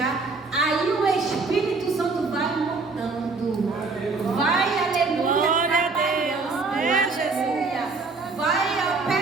aí o Espírito Santo vai mudando. Vai, aleluia, trabalhando, aleluia. Vai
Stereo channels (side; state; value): left; quieter; 4.0 dB